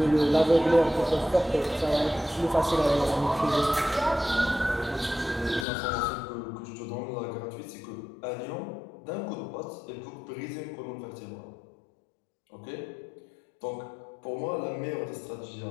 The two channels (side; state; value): right; drops out; at 5.7 s